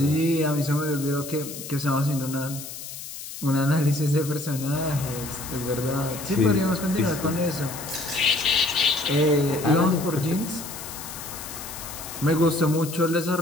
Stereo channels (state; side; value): noise; left; hiss, 11 dB below the sound